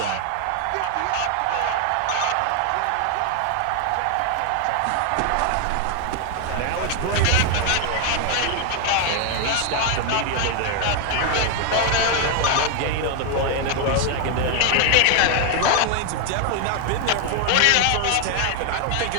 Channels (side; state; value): both; different; correlation 0.00